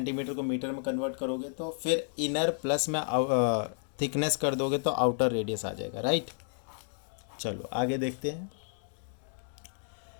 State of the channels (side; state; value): right; silent; digital silence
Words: को मीटर में कन्वर्ट करोगे तो फिर इनर प्लस में थिकनेस कर दोगे तो आउटर रेडियस आ जाएगा, राइट। चलो आगे देखते हैं।